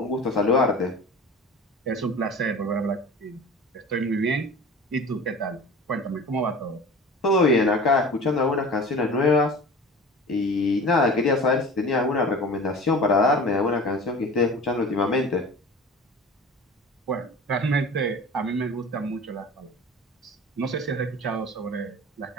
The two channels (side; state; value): both; normal; correlation 0.38